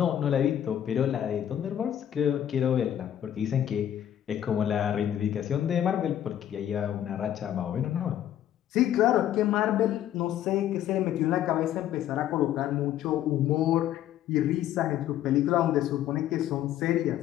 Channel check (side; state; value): right; quieter; 11.1 dB